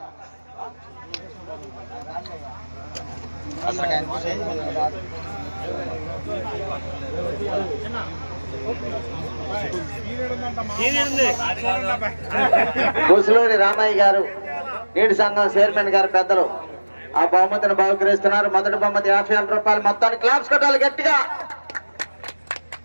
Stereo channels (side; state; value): both; inverted; correlation -1.00